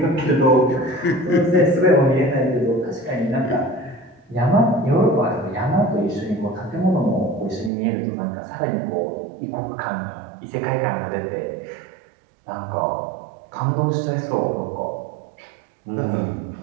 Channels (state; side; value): drops out; left; at 7.7 s